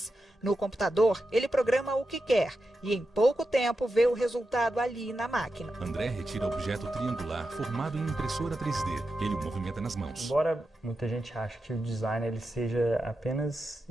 No computador, ele programa o que quer e em pouco tempo vê o resultado ali na máquina. André retira objeto triangular formado em impressora 3D. Ele o movimenta nas mãos. Embora muita gente ache que o design ele seja apenas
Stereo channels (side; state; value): both; normal; correlation 0.89